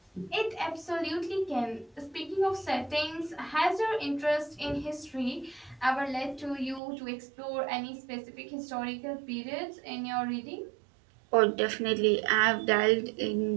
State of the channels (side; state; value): left; drops out; at 6.8 s